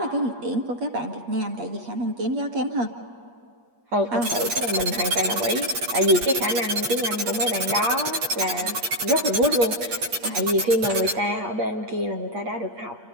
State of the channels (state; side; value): late; left; 8.4 ms